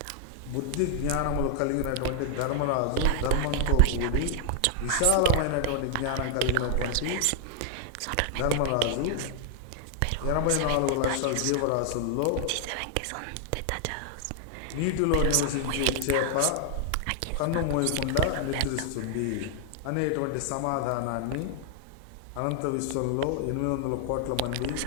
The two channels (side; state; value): both; different; correlation 0.00